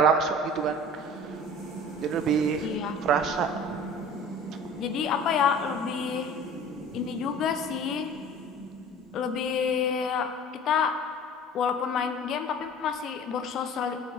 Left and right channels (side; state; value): both; normal; correlation 0.43